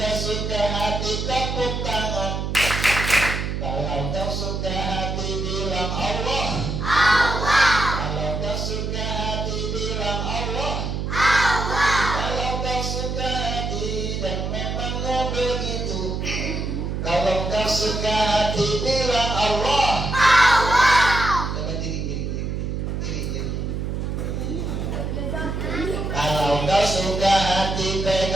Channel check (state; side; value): noise; right; hum, 3 dB below the sound